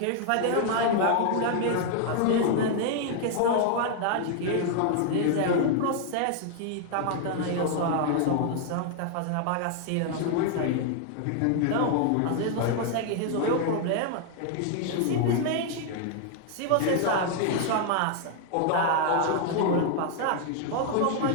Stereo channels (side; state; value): both; different; correlation 0.00